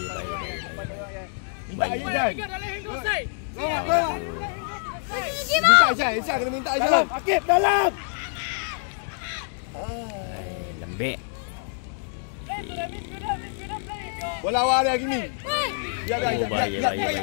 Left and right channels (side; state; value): right; silent; digital silence